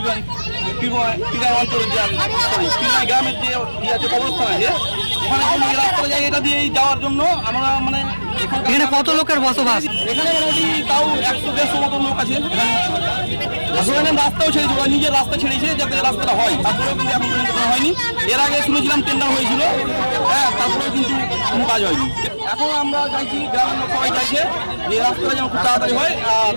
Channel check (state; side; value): inverted; both; correlation -1.00